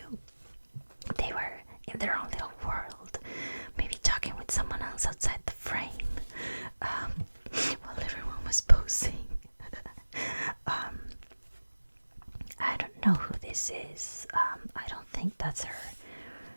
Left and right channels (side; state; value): both; inverted; correlation -1.00